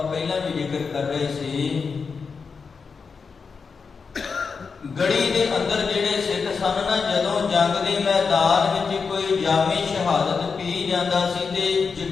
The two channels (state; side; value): quieter; right; 5.3 dB